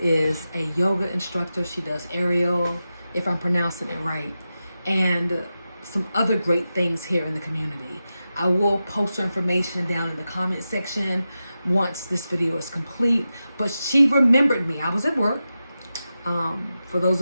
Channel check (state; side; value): inverted; both; correlation -0.92